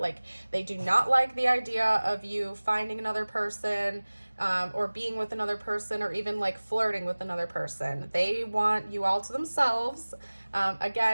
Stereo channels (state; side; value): inverted; both; correlation -1.00